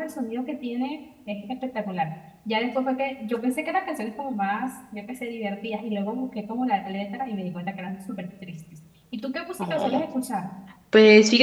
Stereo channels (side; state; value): both; identical; correlation 1.00